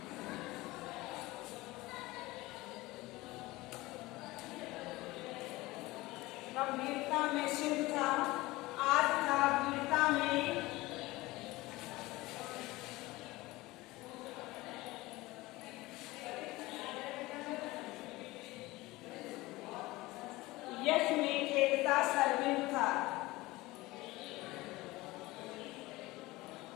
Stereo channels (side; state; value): right; quieter; 20.0 dB